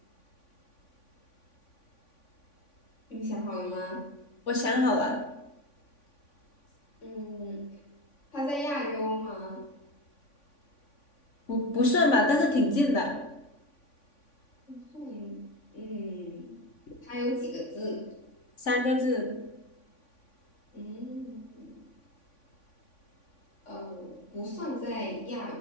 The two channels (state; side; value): late; right; 3.5 ms